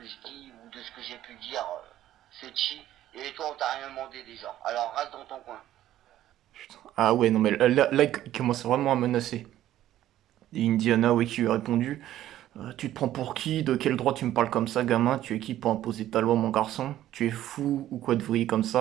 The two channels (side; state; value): left; quieter; 13.0 dB